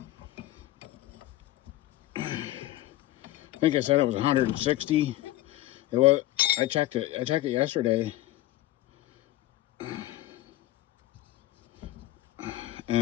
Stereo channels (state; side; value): quieter; right; 15.7 dB